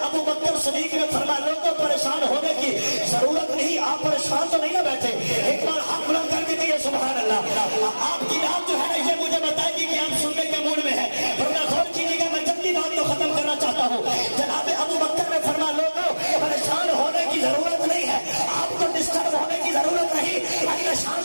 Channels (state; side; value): inverted; both; correlation -1.00